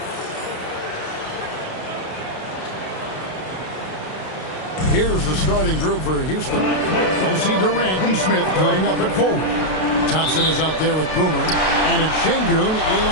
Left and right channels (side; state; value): right; late; 32 ms